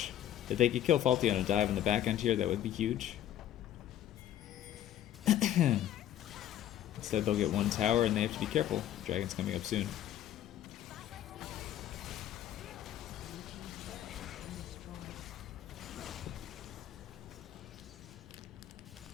If they could kill Faulty on a dive in the back end here, that would be huge. Instead, they'll get one tower, and they have to be careful. Dragon's coming up soon.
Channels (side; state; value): right; quieter; 11.6 dB